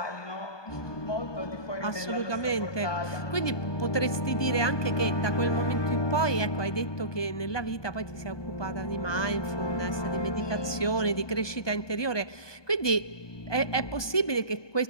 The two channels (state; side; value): late; right; 1.2 ms